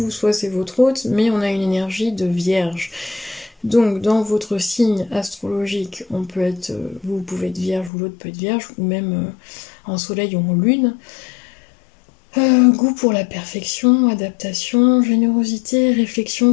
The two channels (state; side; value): drops out; right; at 7.9 s